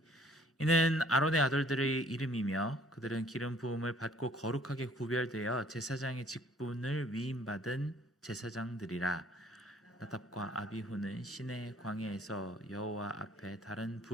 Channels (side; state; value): both; normal; correlation 0.58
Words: 이는 아론의 아들들의 이름이며 그들은 기름 부음을 받고 거룩하게 구별되어 제사장의 직분을 위임받은 제사장들이라. 나답과 아비후는 시내 광야에서 여호와 앞에 다른